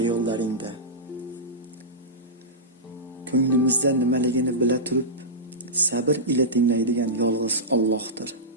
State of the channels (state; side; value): normal; both; correlation -0.15